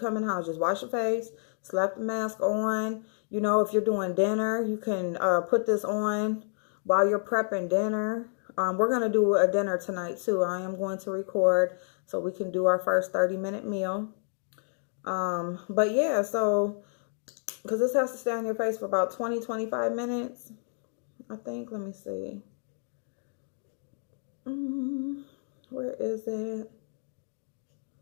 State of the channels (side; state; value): right; silent; digital silence